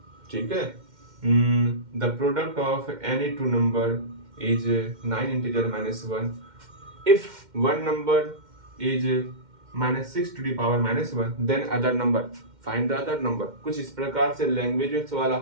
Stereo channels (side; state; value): left; late; 2.1 ms